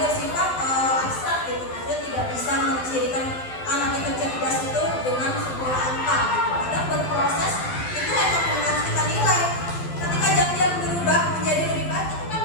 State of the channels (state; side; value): late; right; 12 ms